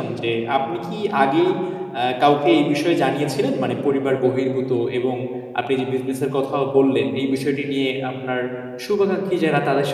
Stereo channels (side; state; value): both; identical; correlation 1.00